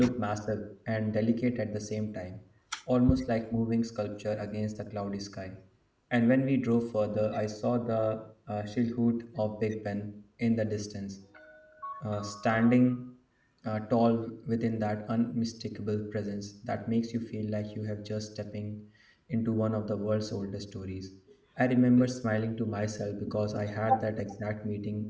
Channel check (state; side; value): identical; both; correlation 1.00